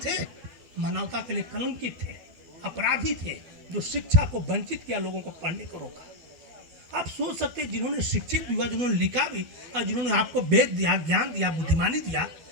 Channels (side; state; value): left; late; 12 ms